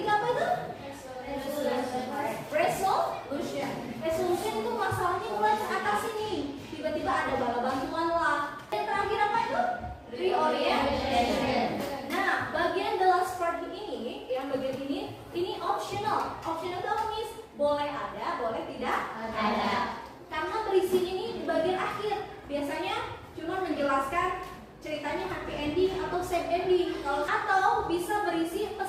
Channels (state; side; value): identical; both; correlation 1.00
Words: tidak ada. Karena berisi ini di bagian akhir. Biasanya cuma menjelaskan ceritanya happy ending atau sad ending. Atau bisa berisi